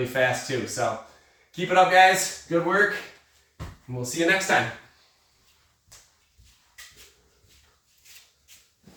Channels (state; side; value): identical; both; correlation 1.00